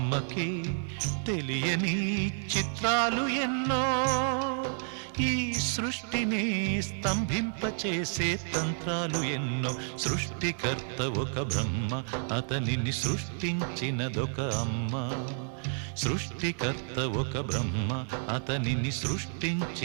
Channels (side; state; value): left; silent; 58 dB below the other